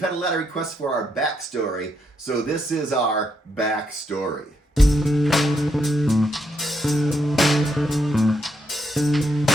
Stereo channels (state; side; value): normal; both; correlation 0.78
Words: a lot of requests for our backstory. So this is our backstory.